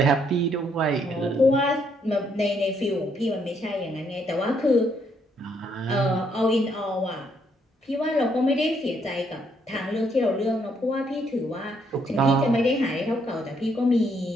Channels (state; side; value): normal; both; correlation 0.72